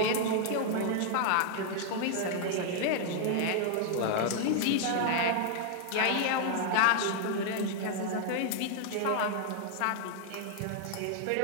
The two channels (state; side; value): different; both; correlation 0.00